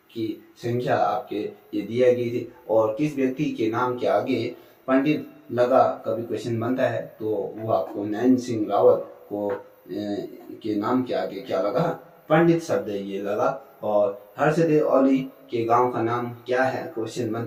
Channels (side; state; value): both; identical; correlation 1.00